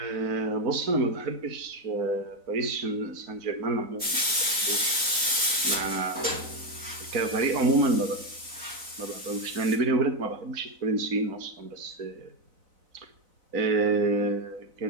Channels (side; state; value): left; late; 4.0 ms